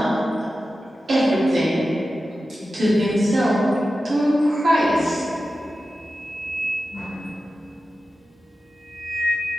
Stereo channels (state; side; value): normal; both; correlation 0.93